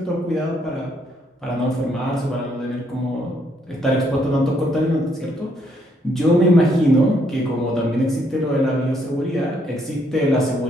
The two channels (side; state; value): both; normal; correlation 0.71